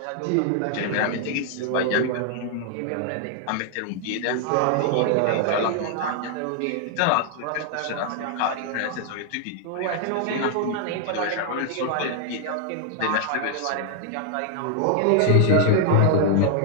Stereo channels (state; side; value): different; both; correlation 0.00